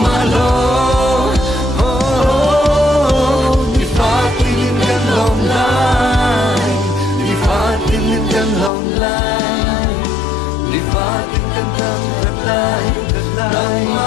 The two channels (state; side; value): drops out; right; at 8.7 s